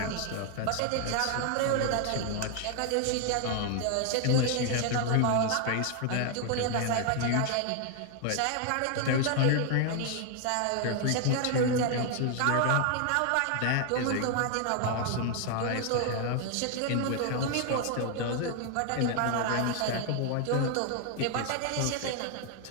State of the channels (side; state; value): both; different; correlation 0.00